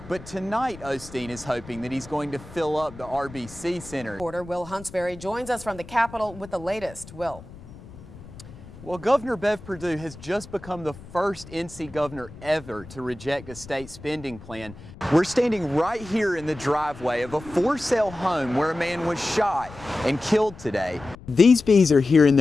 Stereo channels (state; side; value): noise; left; rumble, 17 dB below the sound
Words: But tonight, Osteen is hoping that he's going to fill up the RBC Center. Reporter Will Huntsberry joins us from the Capitol with the latest. Will. Well, Governor Bev Perdue has just become the first NC governor ever to reject a state spending plan. We're standing right here in the driveway of a for-sale home where a man was shot and killed today. These bees are here in